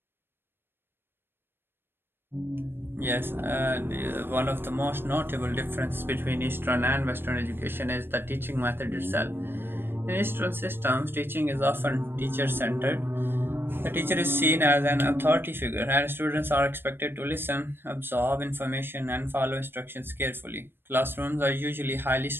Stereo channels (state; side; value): late; left; 0.10 ms